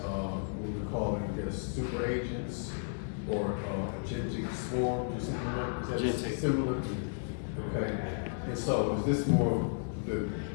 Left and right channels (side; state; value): right; silent; digital silence